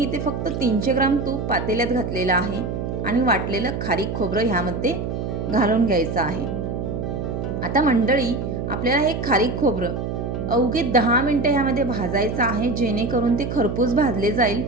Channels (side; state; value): right; noise; hum, 4 dB below the sound